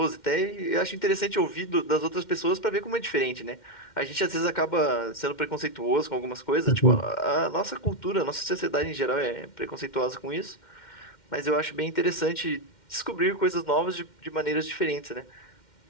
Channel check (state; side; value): late; right; 2.1 ms